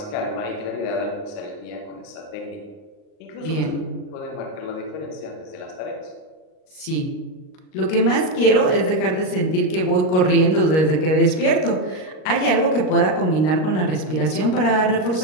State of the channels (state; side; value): late; right; 38 ms